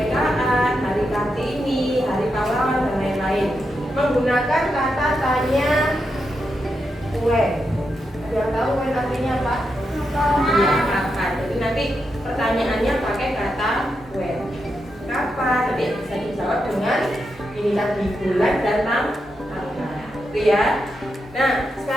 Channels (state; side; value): normal; both; correlation 0.85